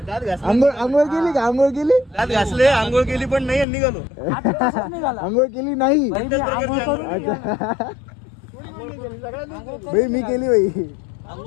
आंघोळ केली का? आंघोळ केली पण नाही निघालो. आंघोळ केली नाही. भाई मी केली भाई.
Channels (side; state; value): right; drops out; at 3.7 s